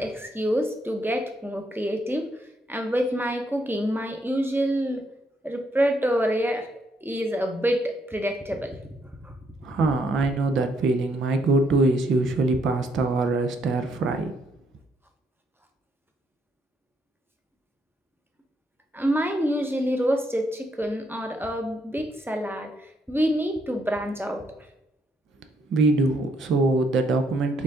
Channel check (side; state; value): both; normal; correlation 0.73